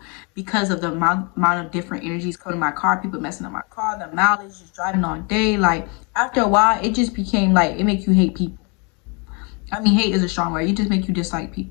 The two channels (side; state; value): right; quieter; 32.5 dB